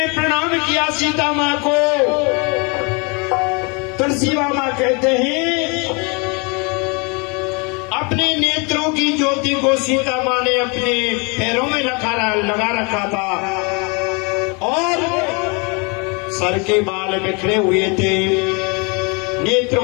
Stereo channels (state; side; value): quieter; right; 31.5 dB